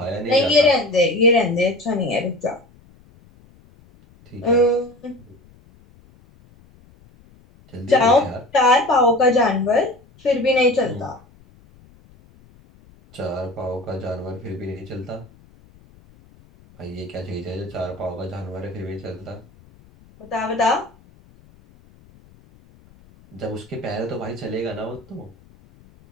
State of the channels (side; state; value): left; noise; rumble, 27 dB below the sound